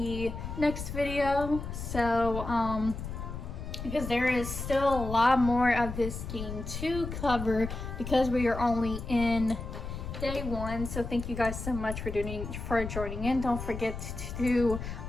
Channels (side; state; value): left; noise; rumble, 7 dB below the sound